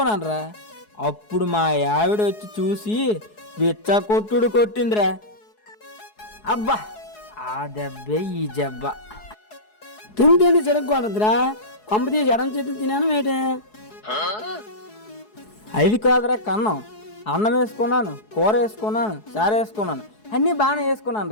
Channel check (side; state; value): right; late; 4.7 ms